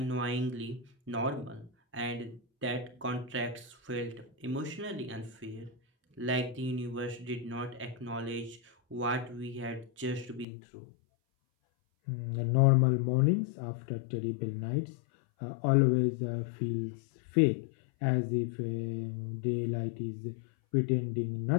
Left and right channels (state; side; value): drops out; right; at 10.5 s